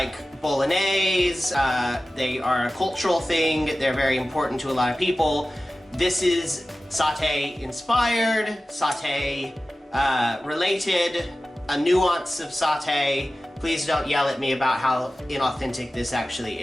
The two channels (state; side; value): normal; both; correlation 0.96